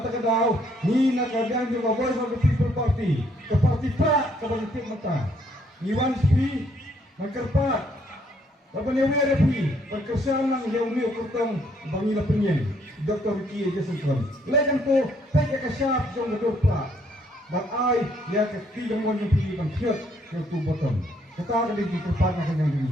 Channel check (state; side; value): normal; both; correlation 0.68